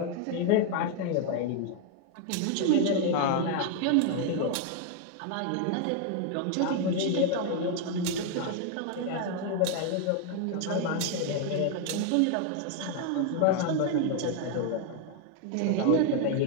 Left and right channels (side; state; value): both; different; correlation 0.00